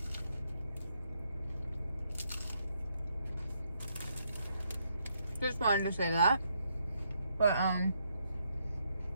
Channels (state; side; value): inverted; both; correlation -0.76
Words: Just wanted to say that. But,